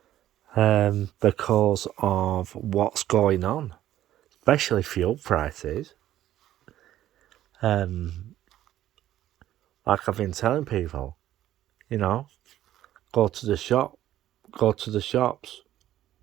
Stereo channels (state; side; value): quieter; left; 12.9 dB